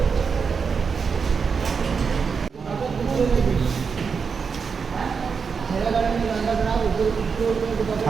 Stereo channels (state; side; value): quieter; left; 5.7 dB